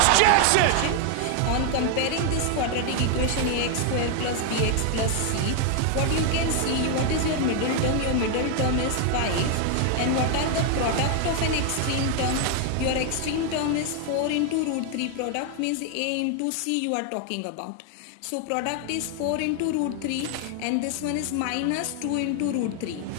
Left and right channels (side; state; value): both; different; correlation 0.00